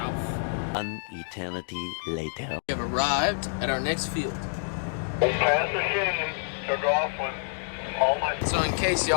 An eternity later. We have arrived at our next field. So in case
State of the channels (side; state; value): right; silent; digital silence